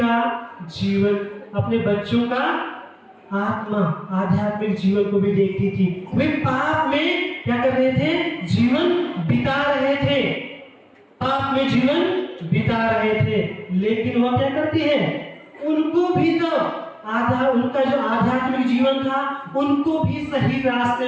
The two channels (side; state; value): both; identical; correlation 1.00